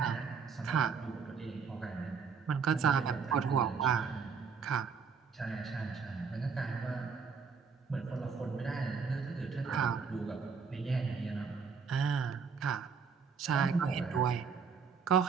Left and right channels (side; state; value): left; quieter; 5.8 dB